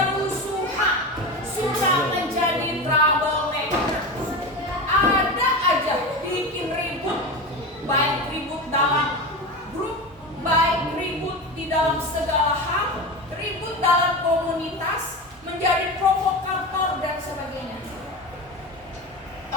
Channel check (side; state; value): both; normal; correlation 0.24